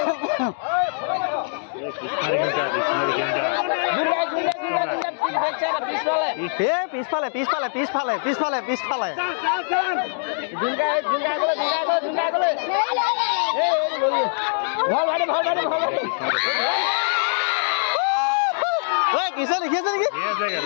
পিছফালে পিছফালে পিছফালে পিছফালে পিছফালে কিছে দেখি আছে নেকি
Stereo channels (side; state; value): right; silent; digital silence